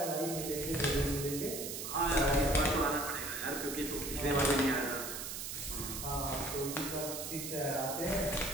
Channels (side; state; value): right; noise; hiss, 6 dB below the sound